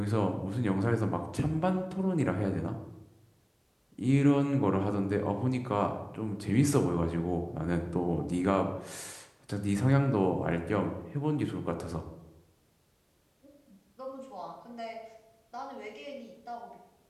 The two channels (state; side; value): identical; both; correlation 1.00